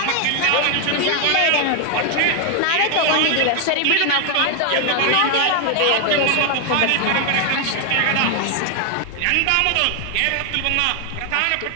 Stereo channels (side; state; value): both; different; correlation 0.00